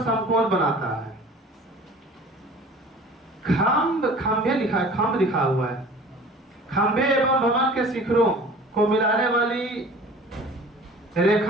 बनाता है। खंभे लिखा है, खंभ लिखा हुआ है। खंभे एवं भवन के शिखरों को मिलाने वाली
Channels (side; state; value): both; normal; correlation 0.45